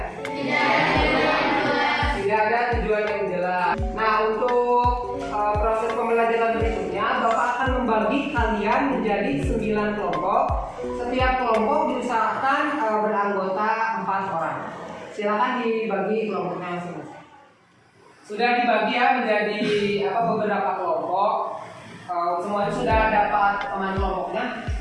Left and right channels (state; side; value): identical; both; correlation 1.00